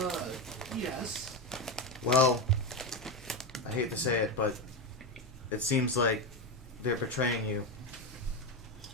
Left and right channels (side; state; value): both; normal; correlation 0.12